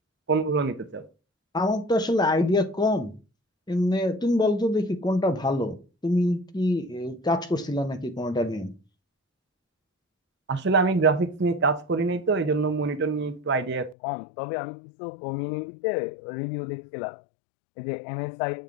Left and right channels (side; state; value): right; drops out; at 14.0 s